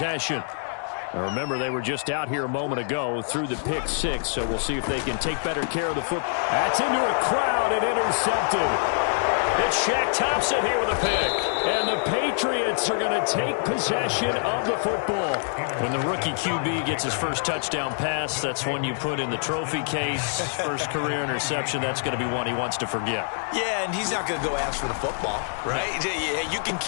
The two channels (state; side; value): silent; right; digital silence